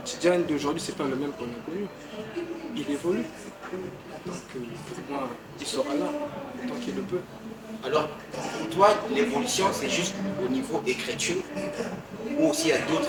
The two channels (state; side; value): identical; both; correlation 1.00